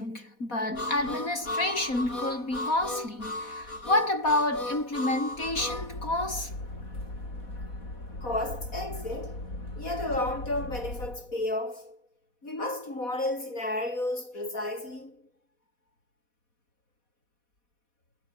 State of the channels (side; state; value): right; late; 4.1 ms